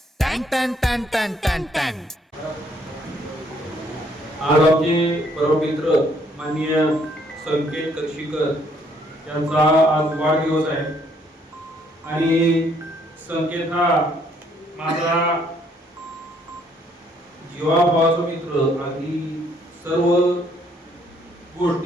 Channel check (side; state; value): both; normal; correlation 0.67